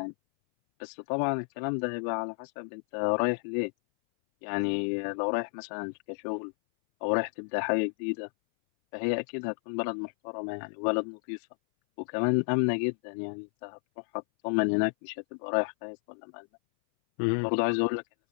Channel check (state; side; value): silent; right; 57 dB below the other